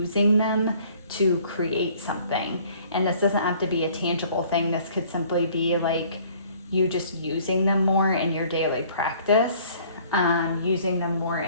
them to create something. And this doesn't have to be a tangible thing. This could simply be like you just using them more in your daily practice, using them more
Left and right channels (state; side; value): inverted; both; correlation -0.56